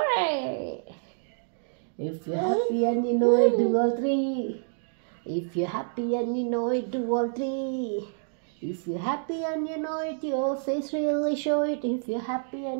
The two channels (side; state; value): left; silent; digital silence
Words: If you're happy and you know it, do all three. If you're happy and you know it, do all three. If you're happy and you know it, your face really show it. If you're happy